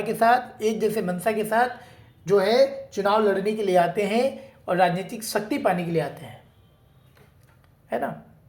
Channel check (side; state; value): both; identical; correlation 1.00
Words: के साथ, एक जैसे मंशा के साथ जो है चुनाव लड़ने के लिए आते हैं और राजनीतिक शक्ति पाने के लिए आते हैं, है ना।